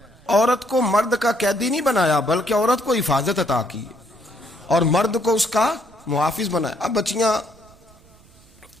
عورت کو مرد کا قیدی نہیں بنایا، بلکہ عورت کو حفاظت عطا کی اور مرد کو اس کا محافظ بنایا۔ اب بچیاں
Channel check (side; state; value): right; noise; rumble, 27 dB below the sound